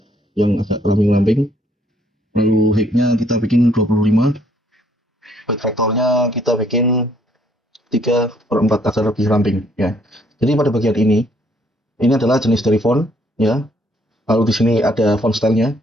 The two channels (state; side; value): normal; both; correlation 0.66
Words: yang agak lamping-lamping. Lalu height-nya kita bikin 25. Weight vektornya kita bikin 3/4 agar lebih ramping ya. Jadi pada bagian ini adalah jenis dari font ya. Lalu di sini ada font style-nya,